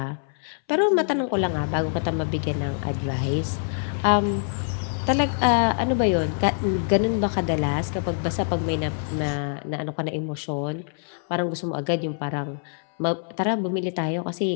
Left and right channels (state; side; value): silent; right; 62 dB below the other